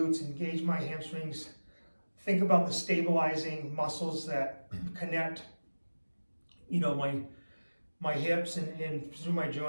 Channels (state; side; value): inverted; both; correlation -1.00